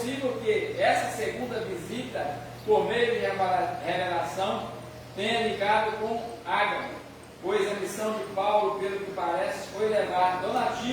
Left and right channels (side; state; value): both; identical; correlation 1.00